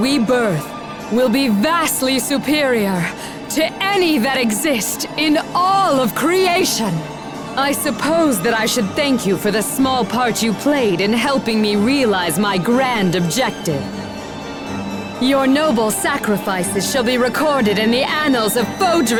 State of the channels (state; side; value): identical; both; correlation 1.00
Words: birth will be vastly superior to any that exist in all of creation. I suppose that I should thank you for the small part you played in helping me realize my grand objective. Your noble sacrifices shall be recorded in the annals of